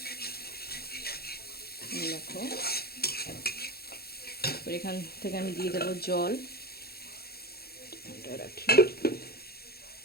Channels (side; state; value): right; late; 0.45 ms